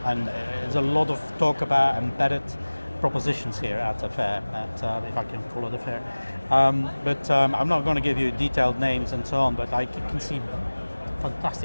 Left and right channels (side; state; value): both; inverted; correlation -1.00